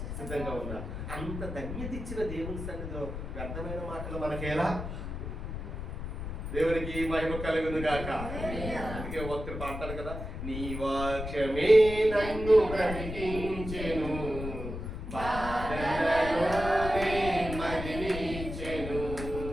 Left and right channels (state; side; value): noise; left; rumble, 7 dB below the sound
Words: సిద్ధంగా ఉన్నారు. అంత ధన్యత ఇచ్చిన దేవుని సన్నిధిలో వ్యర్థమైన మాటలు మనకేలా? దేవునికి మహిమ కలుగును గాక. అందుకే భక్తుడు పాడతాడు కదా, నీ వాక్యమే నన్ను బ్రతికించెను, బాధలలోనే మదిలించెను.